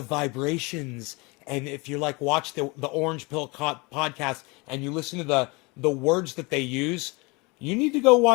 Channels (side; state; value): right; quieter; 26.8 dB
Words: vibrations, and if you watch the Orange Pill podcast and you listen to the words that they use, you need to go